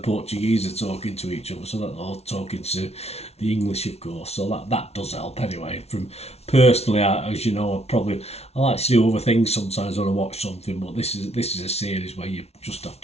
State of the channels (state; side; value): late; right; 0.31 ms